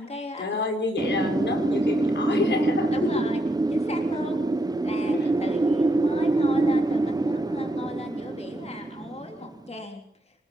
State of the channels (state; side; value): normal; both; correlation 0.77